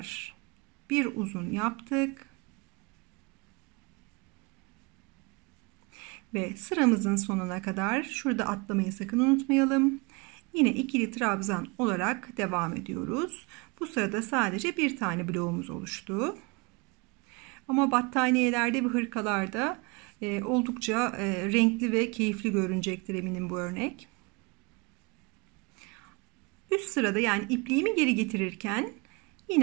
bir uzun yaptık. Ve sıramızın sonuna kadar şurada atlamayı sakın unutmayalım. Yine ikili trabzan olarak devam ediyoruz. Bu sırada sadece bir tane bloğumuz oluştu. Ama battaniyelerde ve hırkalarda oldukça renkli ve keyifli görünecektir eminim bu örnek. Üst sırada yani ipliğimi geri getirirken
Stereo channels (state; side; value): quieter; left; 28.1 dB